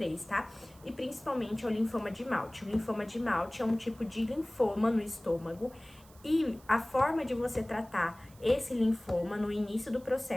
tá? E principalmente ao linfoma de Malte. O linfoma de Malte é um tipo de linfoma no estômago e a forma de você tratar esse linfoma no início do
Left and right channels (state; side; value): noise; right; hiss, 25 dB below the sound